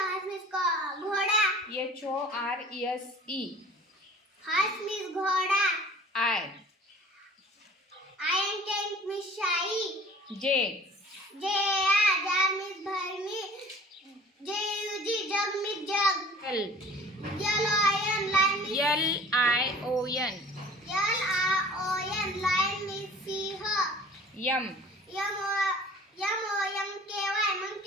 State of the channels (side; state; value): both; normal; correlation 0.47